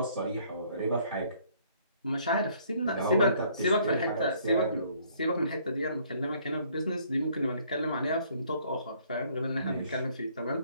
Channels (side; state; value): both; inverted; correlation -0.62